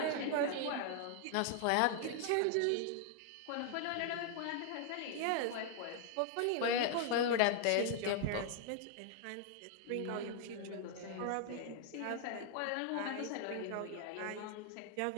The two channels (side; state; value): both; different; correlation 0.00